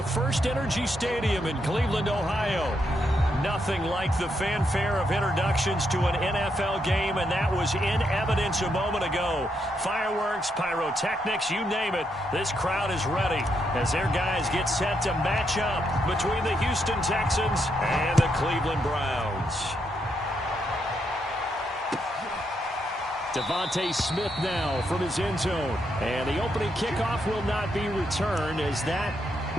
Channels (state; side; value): normal; both; correlation 0.79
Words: First Energy Stadium in Cleveland, Ohio. Nothing like the fanfare of introductions to an NFL game, and that was in evidence a moment ago. Fireworks, pyrotechnics, you name it, this crowd is ready as their guys get set to match up between the Houston Texans and the Cleveland Browns. Devontae Smith now from his end zone. And the opening kickoff will not be returned, as that